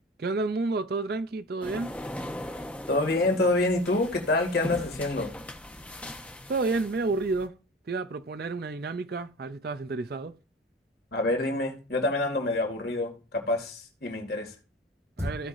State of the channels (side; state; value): both; normal; correlation 0.35